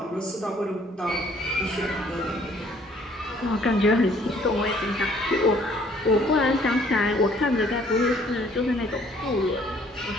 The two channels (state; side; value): normal; both; correlation 0.60